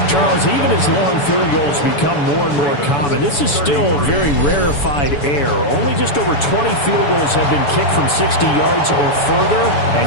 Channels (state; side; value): late; right; 7.0 ms